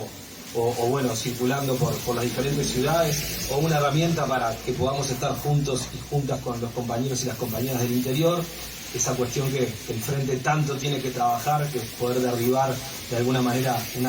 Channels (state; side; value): identical; both; correlation 1.00